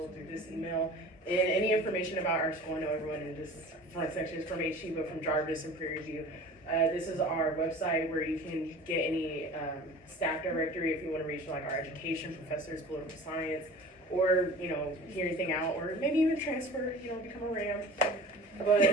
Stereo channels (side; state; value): both; normal; correlation 0.41